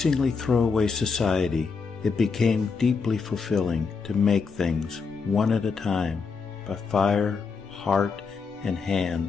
throwaway society, it became deeply fulfilling to make things one at a time by fire, heart, and hand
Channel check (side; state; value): right; quieter; 5.1 dB